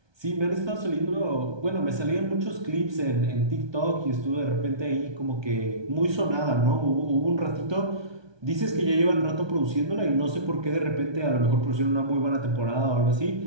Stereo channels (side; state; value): left; late; 1.2 ms